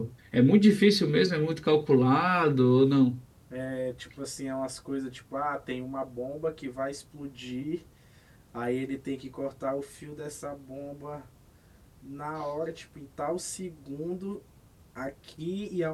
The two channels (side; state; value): both; identical; correlation 1.00